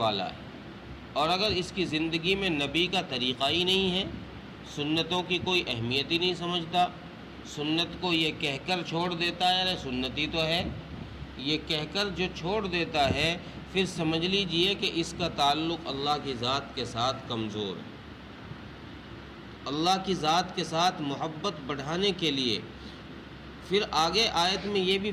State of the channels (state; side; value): identical; both; correlation 1.00